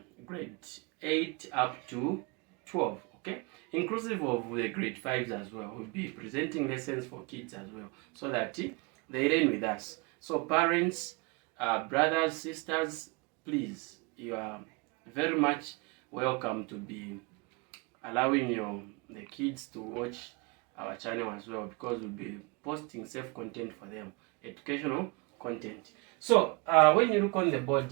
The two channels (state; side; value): quieter; left; 29.0 dB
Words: grade 8 up to 12. Okay, inclusive of the grade 5s as well. We'll be presenting lessons for kids as well so that they learn with us. So parents, brothers, sisters, please, you are very much welcome to be allowing the kids to watch our channel as well, because we'll be posting safe content for them, educational content. So when you look on the board